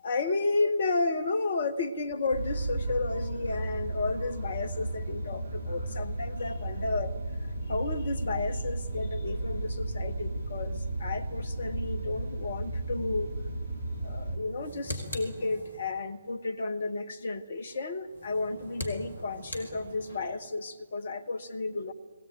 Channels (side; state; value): both; inverted; correlation -0.82